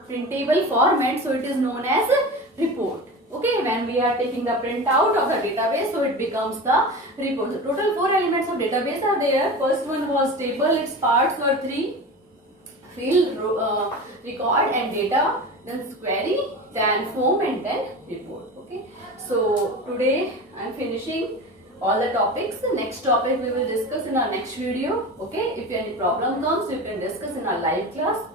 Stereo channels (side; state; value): both; normal; correlation 0.30